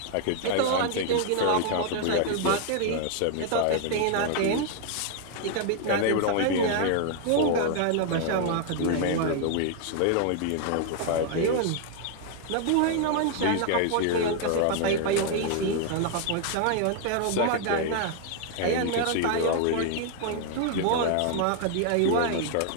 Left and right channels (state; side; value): different; both; correlation 0.00